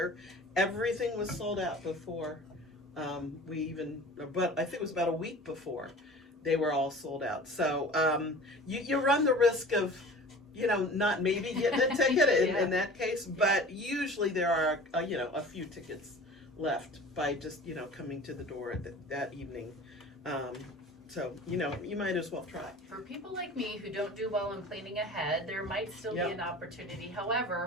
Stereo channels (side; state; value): both; normal; correlation 0.41